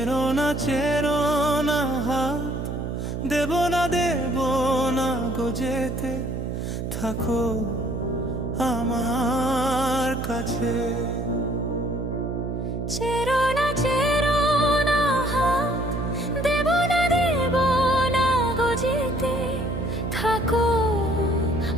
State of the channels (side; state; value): right; noise; hum, 4 dB below the sound